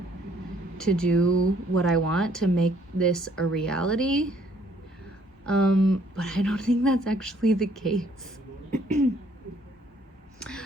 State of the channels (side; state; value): both; normal; correlation 0.63